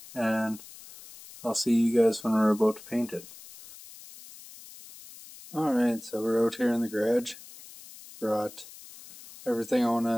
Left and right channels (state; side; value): noise; left; hiss, 18 dB below the sound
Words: and I'll see you guys when we're about to paint it. Alright, so we're out here in the garage. Brought everything I want